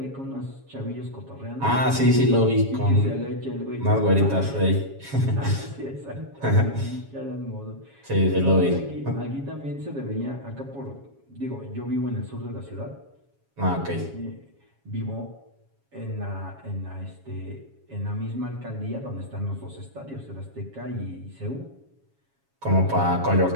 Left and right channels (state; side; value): late; left; 7.3 ms